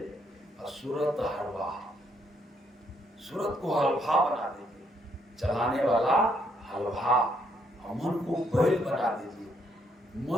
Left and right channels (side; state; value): both; normal; correlation 0.72